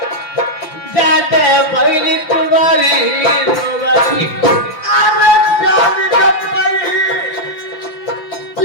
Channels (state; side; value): late; right; 5.8 ms